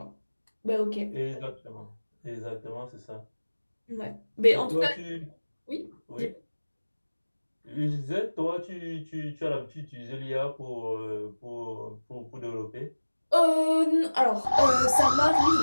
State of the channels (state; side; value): inverted; both; correlation -1.00